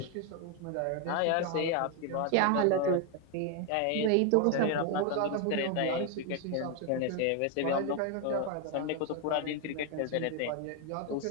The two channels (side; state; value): both; different; correlation 0.01